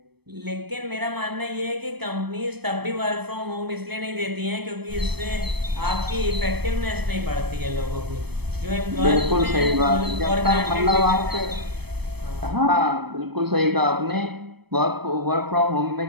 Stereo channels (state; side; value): late; left; 0.97 ms